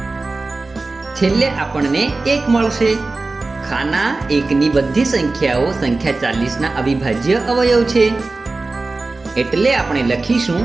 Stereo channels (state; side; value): quieter; left; 3.5 dB